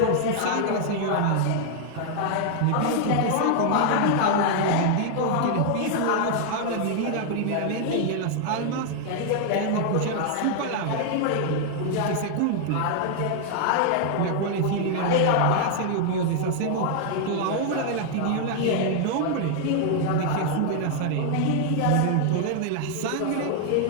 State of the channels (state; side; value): different; both; correlation 0.00